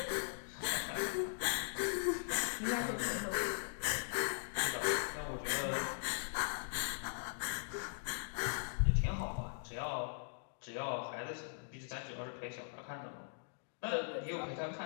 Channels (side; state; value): right; silent; digital silence